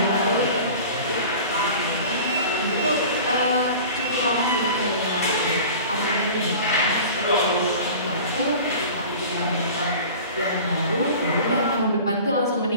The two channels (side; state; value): both; inverted; correlation -0.39